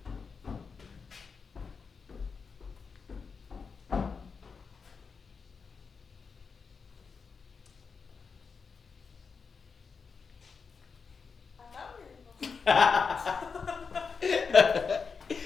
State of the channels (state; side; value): quieter; right; 5.3 dB